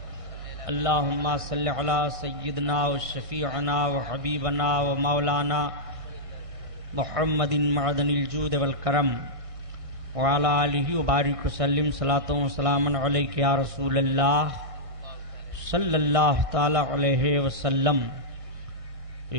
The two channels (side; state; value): left; late; 1.6 ms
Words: اللہم صل علی سیدنا وشفیعنا وحبیبنا ومولانا محمد معدن الجود والکرم وعلی آلہ وبارک وسلم صلاۃ و سلاما علیک یا رسول اللہ صلی اللہ تعالی علیہ وسلم۔